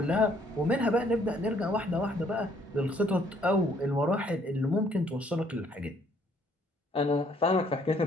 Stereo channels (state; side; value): normal; both; correlation 0.64